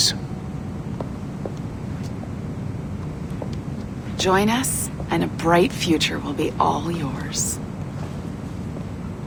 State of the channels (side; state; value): both; identical; correlation 1.00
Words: Join us, and a bright future will be all yours.